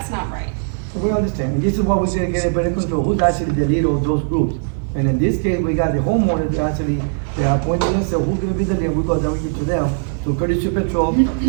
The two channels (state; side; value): silent; left; 67 dB below the other